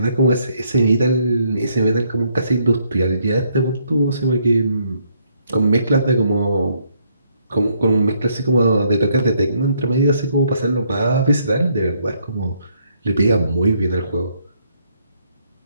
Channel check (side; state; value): both; inverted; correlation -0.71